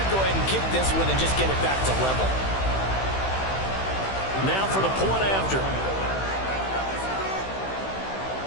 go ahead and kick this one and just get it back to level. Now for the point after.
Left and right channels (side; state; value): right; late; 15 ms